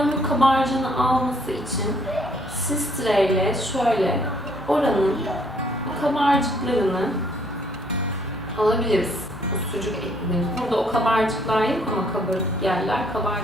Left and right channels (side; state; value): both; normal; correlation 0.66